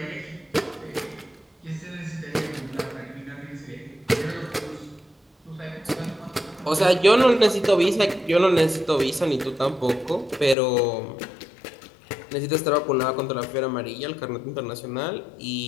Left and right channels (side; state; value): right; drops out; at 10.6 s